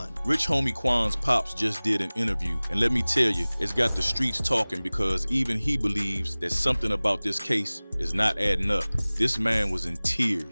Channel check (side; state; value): both; inverted; correlation -1.00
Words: Rich Homie Quan's pops just did an interview, and let me tell you, it's got the streets talking because even he believes that something about this case is not adding up. This man was in